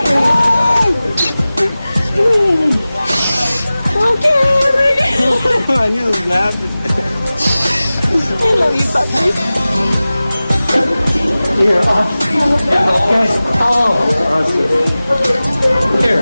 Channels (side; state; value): both; inverted; correlation -0.97